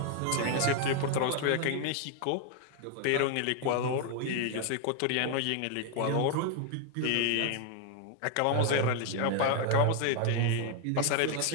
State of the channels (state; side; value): different; both; correlation 0.01